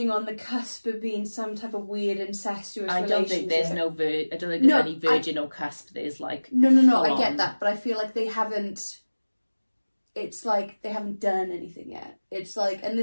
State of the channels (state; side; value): inverted; both; correlation -1.00